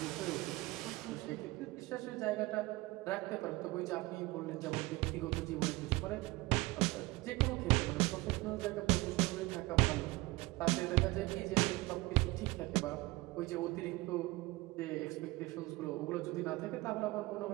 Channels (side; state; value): left; quieter; 21.3 dB